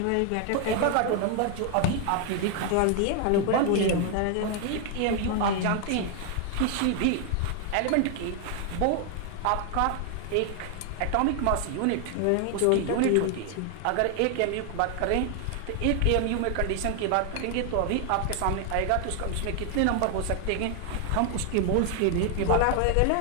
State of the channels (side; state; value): both; different; correlation 0.00